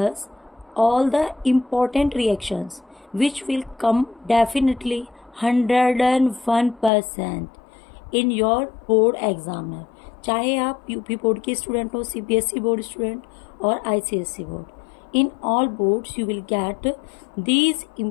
all the important reactions which will come definitely 101% in your board examiner. चाहे आप UP board के student हो, CBSE board student और ICSE board. In all boards you will get these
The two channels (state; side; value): drops out; right; at 6.9 s